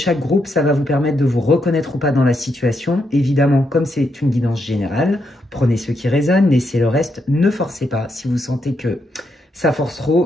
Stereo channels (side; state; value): both; normal; correlation 0.80